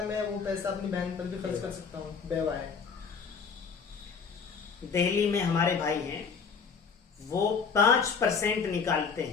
میں وہ پیسہ اپنی بہن پر بھی خرچ کر سکتا ہوں؟ بیوہ ہے. دہلی میں ہمارے بھائی ہیں, وہ 5% نکالتے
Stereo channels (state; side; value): quieter; right; 5.7 dB